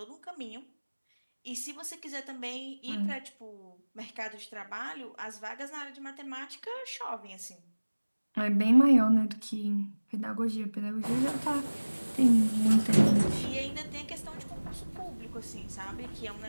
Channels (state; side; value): inverted; both; correlation -1.00